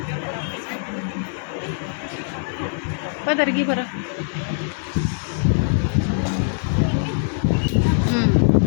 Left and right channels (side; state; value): right; silent; 56 dB below the other